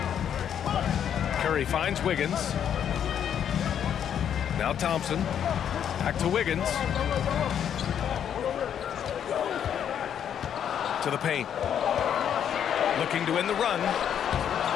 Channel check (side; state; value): right; quieter; 9.0 dB